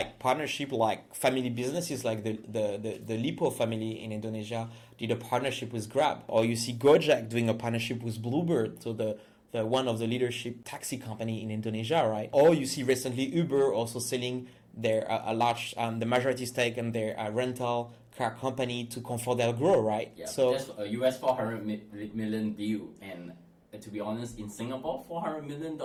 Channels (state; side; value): identical; both; correlation 1.00